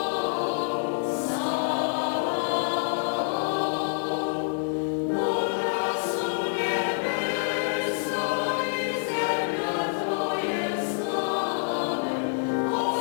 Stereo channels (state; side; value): silent; right; digital silence